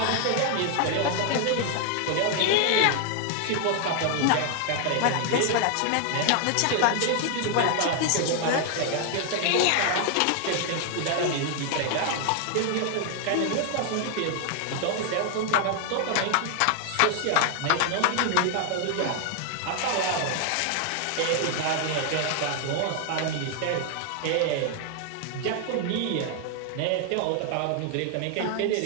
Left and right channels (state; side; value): different; both; correlation 0.00